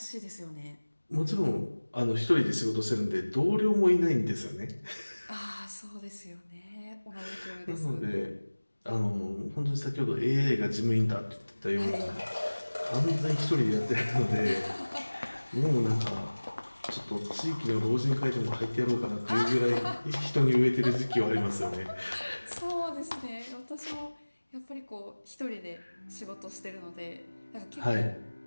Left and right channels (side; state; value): both; inverted; correlation -1.00